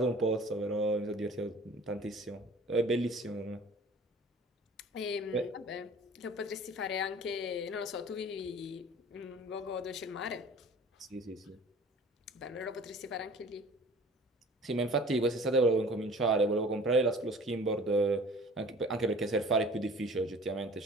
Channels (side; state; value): both; normal; correlation 0.46